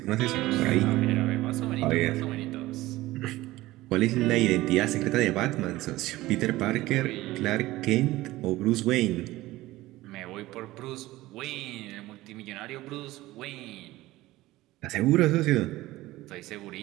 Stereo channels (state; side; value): quieter; left; 17.7 dB